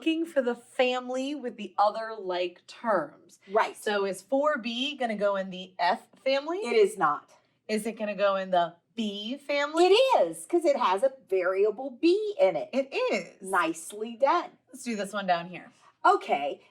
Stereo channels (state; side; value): identical; both; correlation 1.00